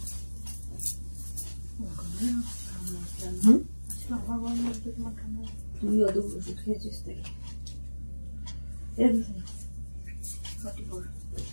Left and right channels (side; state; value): both; inverted; correlation -1.00